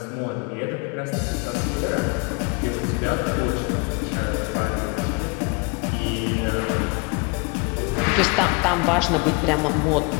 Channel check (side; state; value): right; quieter; 31.2 dB